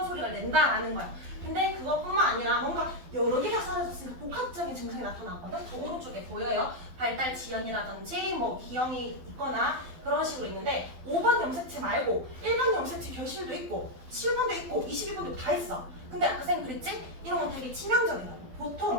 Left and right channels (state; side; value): late; left; 12 ms